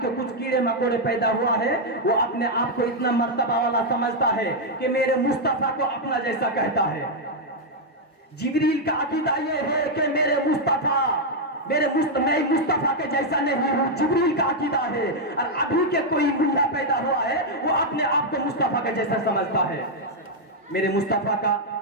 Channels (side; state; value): both; normal; correlation -0.01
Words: کے کچھ کیڑے مکوڑے پیدا ہوا ہے، وہ اپنے آپ کو اتنا مرتبہ والا سمجھتا ہے کہ میرے مصطفیٰ کو اپنا جیسا کہتا ہے. جبریل کا عقیدہ یہ ہے کہ میرے مصطفیٰ میں مصطفیٰ کے جیسا نہیں ہوں. جبریل کا عقیدہ ہے. اور ابھی کے کوئی ملا پیدا ہوا ہے وہ اپنے آپ کو مصطفیٰ کے جیسا سمجھتا ہے. میرے مصطفیٰ کا